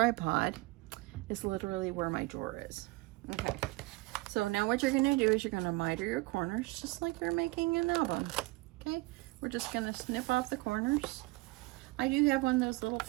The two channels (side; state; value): left; quieter; 23.0 dB